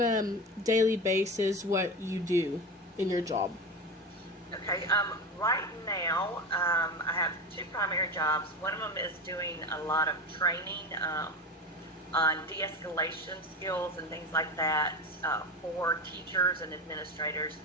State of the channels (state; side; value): normal; both; correlation 0.24